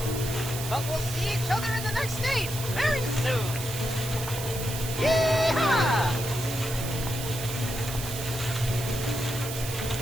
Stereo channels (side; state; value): right; noise; hiss, 7 dB below the sound